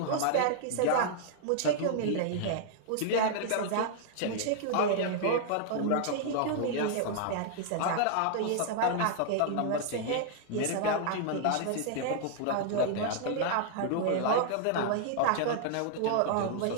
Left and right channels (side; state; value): both; different; correlation -0.01